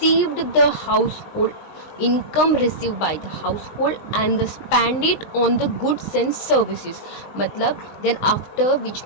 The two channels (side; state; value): right; late; 19 ms